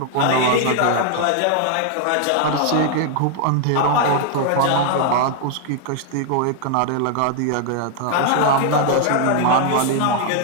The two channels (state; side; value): different; both; correlation 0.00